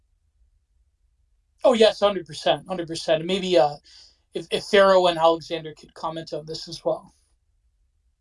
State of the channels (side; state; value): both; identical; correlation 1.00